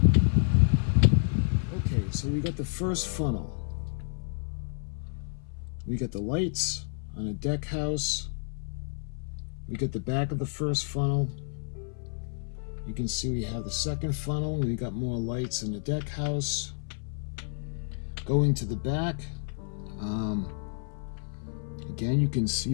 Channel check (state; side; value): silent; right; 56 dB below the other